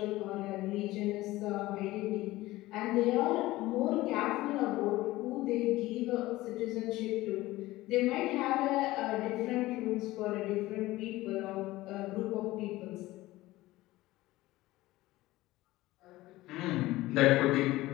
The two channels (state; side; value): quieter; right; 17.9 dB